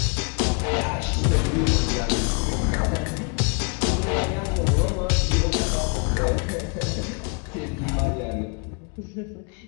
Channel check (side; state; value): right; quieter; 36.8 dB